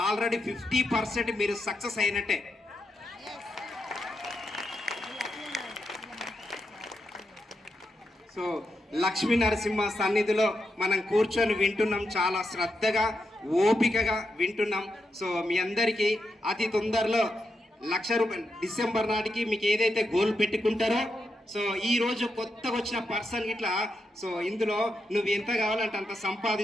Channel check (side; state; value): both; normal; correlation 0.85